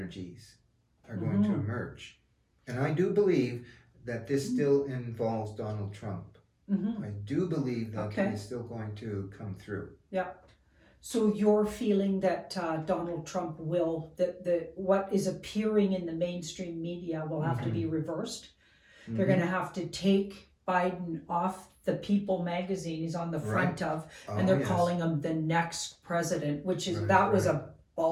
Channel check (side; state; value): both; identical; correlation 1.00